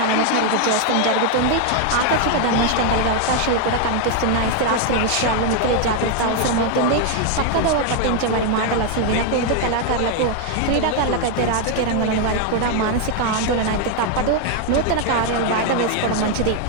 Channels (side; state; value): both; different; correlation 0.00